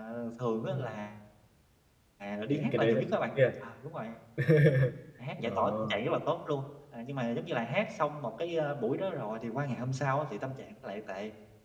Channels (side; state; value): both; identical; correlation 1.00